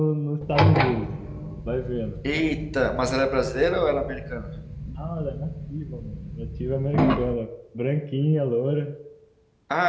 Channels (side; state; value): both; identical; correlation 1.00